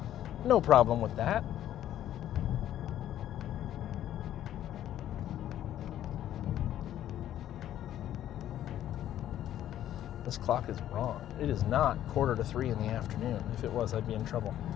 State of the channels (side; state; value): right; quieter; 11.8 dB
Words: No problem with that. This clock is wrong. It is not 2:45 in the afternoon. If it was, I'd be in trouble.